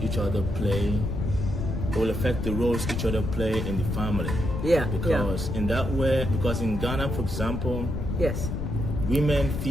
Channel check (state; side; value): noise; left; rumble, 3 dB below the sound